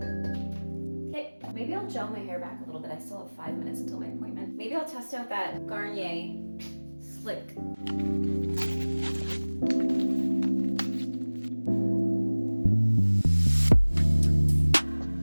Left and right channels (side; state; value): both; inverted; correlation -1.00